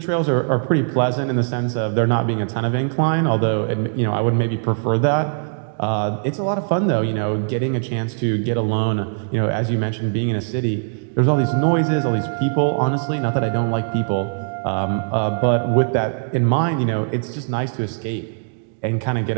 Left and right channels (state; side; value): silent; left; digital silence